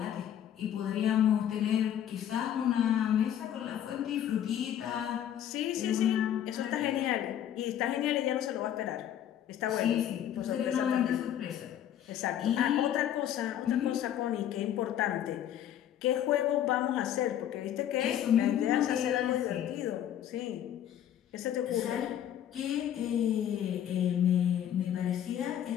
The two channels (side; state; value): right; quieter; 10.6 dB